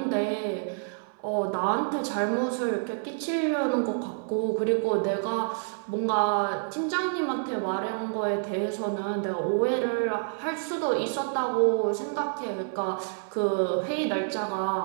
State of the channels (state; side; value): silent; left; digital silence